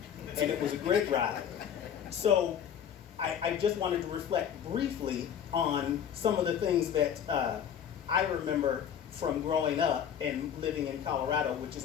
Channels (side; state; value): right; quieter; 8.7 dB